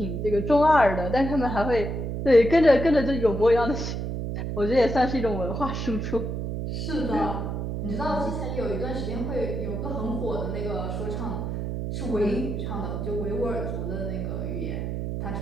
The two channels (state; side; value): noise; right; hum, 3 dB below the sound